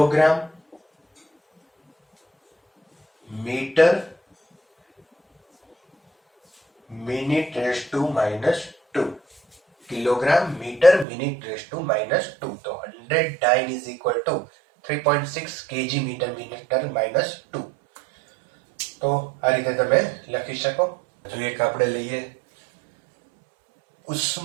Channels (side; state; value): left; drops out; at 11.1 s